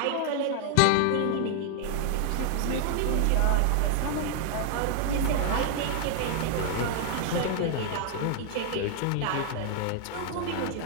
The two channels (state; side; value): different; both; correlation 0.00